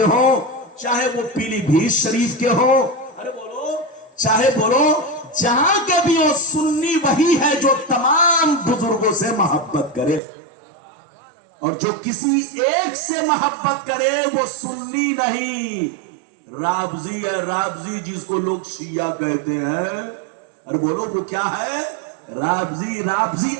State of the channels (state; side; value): drops out; left; at 10.2 s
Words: ہوں، چاہے وہ پیلی بھیت شریف کے ہوں، ارے بولو، چاہے بولو جہاں کے بھی ہو، سنی وہی ہے جو تمام بزرگوں سے محبت کرے، اور جو کسی ایک سے محبت کرے وہ سنی نہیں، رابضی ہے، رابضی جس کو لوگ شیعہ کہتے ہیں، ارے بولو وہ کیا ہے؟ رابضی۔ رابضی